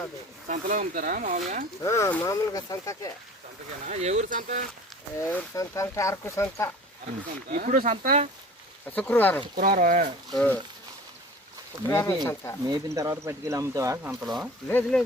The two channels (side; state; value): both; normal; correlation 0.43